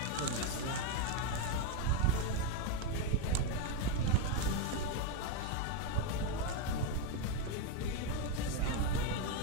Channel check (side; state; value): both; different; correlation 0.03